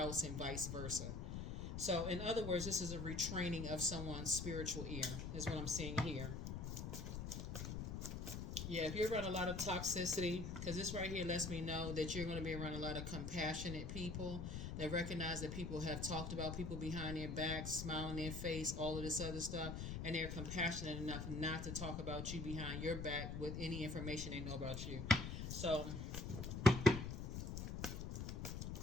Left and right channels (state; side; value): noise; left; rumble, 4 dB below the sound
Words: and vice versa. So, in other words, this is a retraining of someone's spiritual ear, is what I'm seeing here. Yeah, if you're around a lot of toxicity, because this right here lets me know that you're going to be around a lot of compassionate people that recognize that people have talked about people behind their backs, smile in their face, all of this other stuff, and they're compassionate enough not to talk about you behind your back with any information they know about you. So,